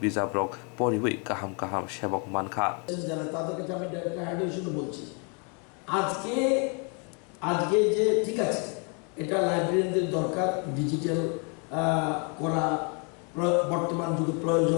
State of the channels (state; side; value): quieter; right; 36.1 dB